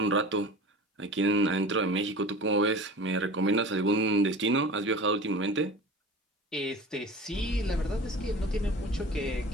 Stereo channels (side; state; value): both; normal; correlation 0.38